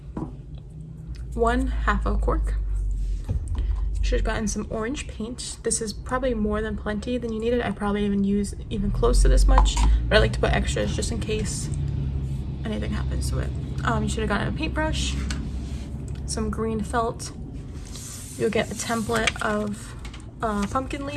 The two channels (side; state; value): both; identical; correlation 1.00